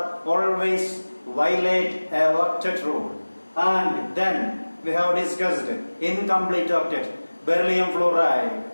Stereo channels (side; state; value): both; inverted; correlation -1.00